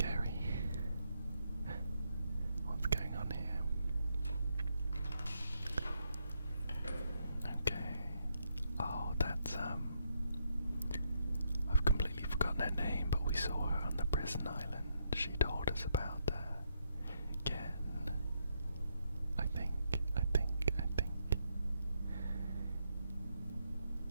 What's going on here? Okay. Oh, that's I've completely forgotten her name, but we saw her on the prison island. She told us about her. Again. I think.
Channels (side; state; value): both; inverted; correlation -0.77